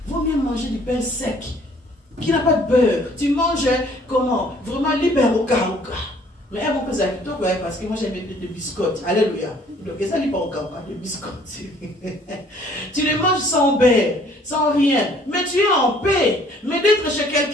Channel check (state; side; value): normal; both; correlation 0.58